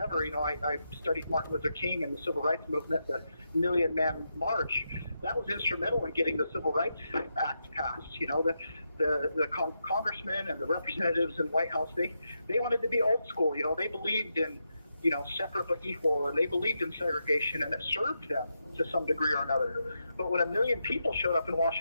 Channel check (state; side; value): inverted; both; correlation -0.85